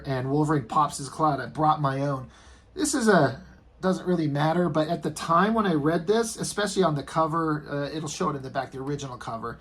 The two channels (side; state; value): both; identical; correlation 1.00